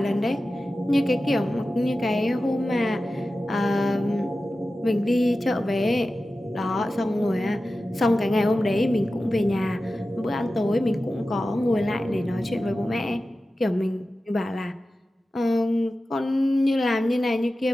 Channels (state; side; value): normal; both; correlation 0.94